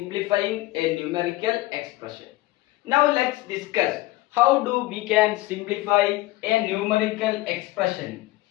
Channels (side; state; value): right; quieter; 18.5 dB